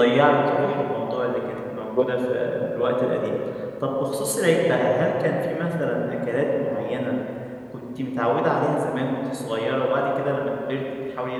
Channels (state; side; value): identical; both; correlation 1.00